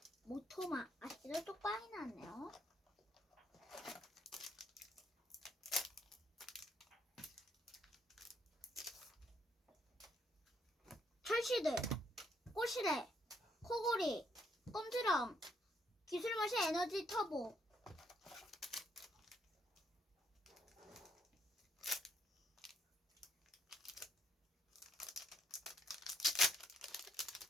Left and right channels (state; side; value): normal; both; correlation 0.71